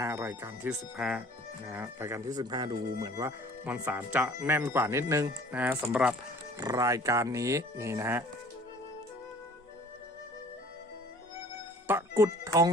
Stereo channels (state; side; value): normal; both; correlation 0.49